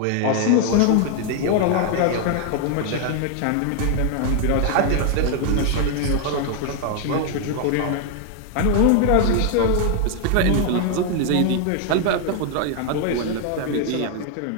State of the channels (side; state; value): both; different; correlation 0.00